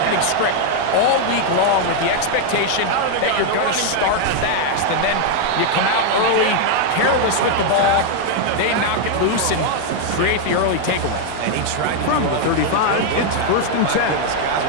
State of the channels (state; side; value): different; both; correlation 0.00